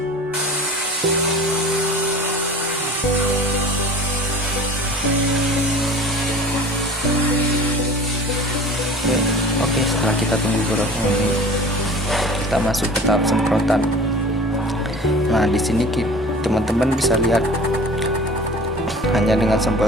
Oke, setelah kita tunggu beberapa menit, kita masuk ke tahap semprotan. Nah, di sini teman-teman bisa lihat, hanya dengan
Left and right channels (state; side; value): normal; both; correlation 0.42